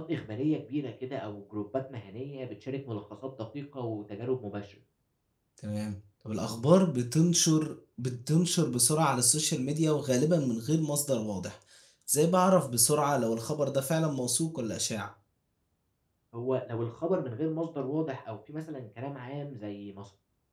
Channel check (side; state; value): both; identical; correlation 1.00